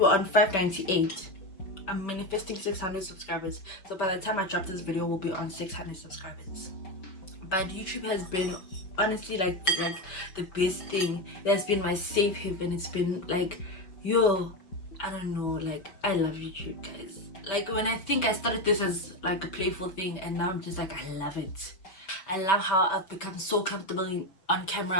on 598. I'm manifesting 600 subscribers. So by the time I drop this video, we'll be on 600 subscribers. But YouTube has been honestly like the best thing. It has been my safe haven. It's been like, yo, I don't know, like, I love YouTube, guys. Like, when I think I started this as like a playful thing, and now I'm just like, I love it. I love how I've become so comfortable on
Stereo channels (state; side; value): late; right; 5.2 ms